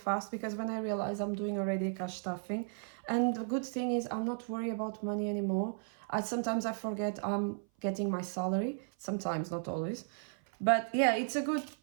because when I realize I'm doing already cash stuffing, and the good thing is I'm not worried about money anymore. Sometimes I forget I'm getting my salary, sometimes, not always. But yeah, it's a good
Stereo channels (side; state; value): left; silent; 55 dB below the other